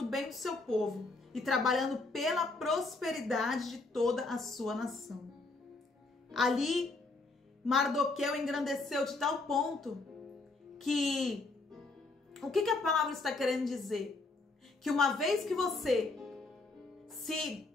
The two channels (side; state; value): right; quieter; 3.5 dB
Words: bem do seu povo, e trabalhando pela prosperidade de toda a sua nação. Ali, Mardoqueu engrandeceu de tal ponto que... O que a palavra está querendo dizer? Que uma vez que você